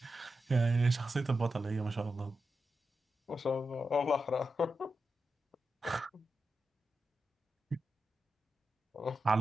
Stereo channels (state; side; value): normal; both; correlation 0.89